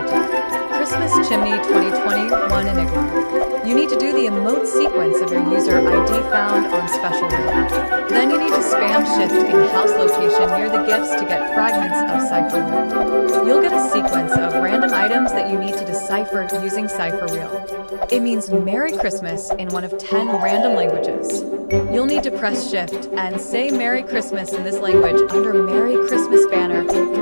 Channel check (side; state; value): both; inverted; correlation -1.00